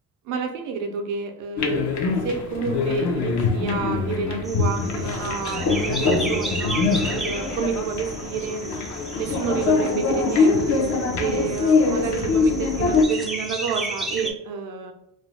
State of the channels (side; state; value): both; normal; correlation 0.34